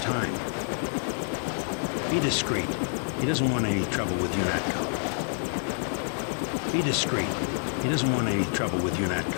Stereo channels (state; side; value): silent; right; digital silence